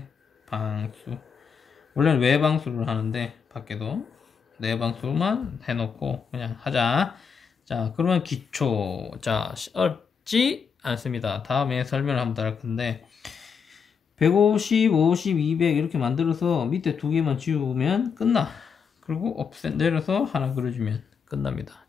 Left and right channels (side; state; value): right; quieter; 6.3 dB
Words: 방수. 원래는 외방수를 하는데 밖에도 내방수만 해놓고 그냥 하자. 자, 그러면 기초. 자, 어렵지 않습니다. 다음에 설명을 한번 더 할 건데 150, 50, 200 이렇게 만들어서 밑에 두 개만 지우면 끝나. 그리고 옵셋 내려서 하나 그려주면 끝납니다.